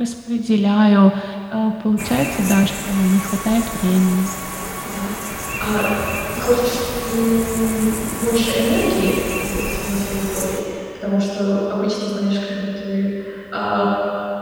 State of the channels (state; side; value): identical; both; correlation 1.00